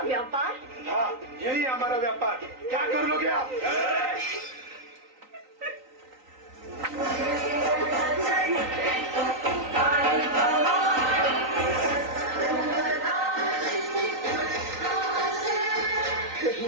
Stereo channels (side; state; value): left; late; 3.9 ms